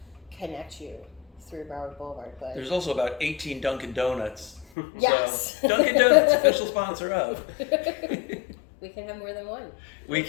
connect you through Broward Boulevard. But there's also about 18 Dunkin' Donuts. Yes. So, Dunkin' Donuts, official sponsor of. We can have more than one. We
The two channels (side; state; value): right; drops out; at 4.7 s